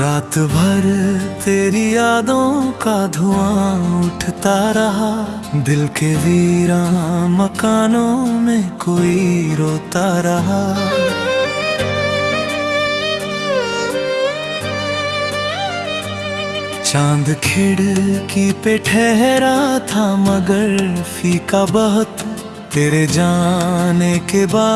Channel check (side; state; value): both; identical; correlation 1.00